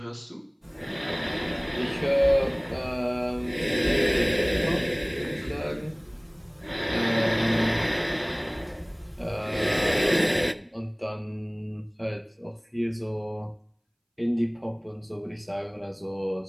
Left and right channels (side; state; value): both; identical; correlation 1.00